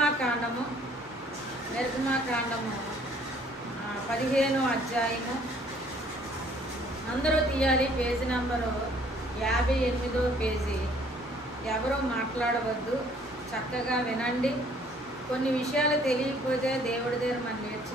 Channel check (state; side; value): normal; both; correlation 0.59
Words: 15వ అధ్యాయము, అందరూ తీయాలి, పేజీ నంబరు 58వ పేజీ. ఎవరో మాట్లాడవద్దు, చక్కగా వినండి. కొన్ని విషయాలు తెలియకపోతే దేవుడి దగ్గర మనం